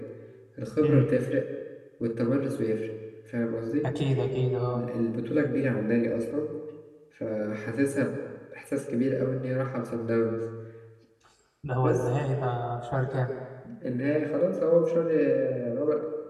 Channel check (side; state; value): both; identical; correlation 1.00